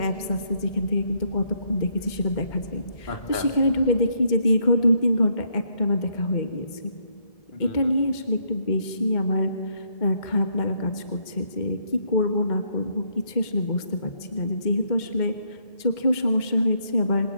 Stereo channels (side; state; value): right; late; 2.1 ms